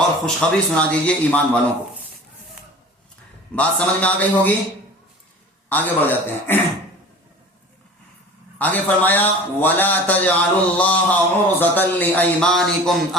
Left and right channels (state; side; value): normal; both; correlation 0.41